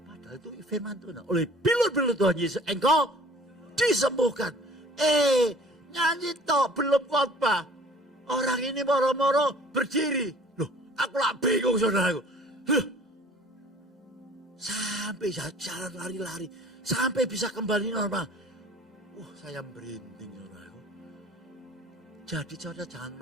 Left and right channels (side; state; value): both; normal; correlation 0.50